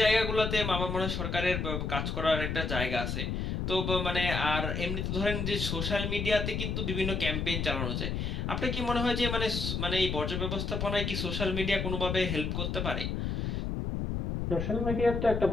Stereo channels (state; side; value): noise; left; rumble, 2 dB below the sound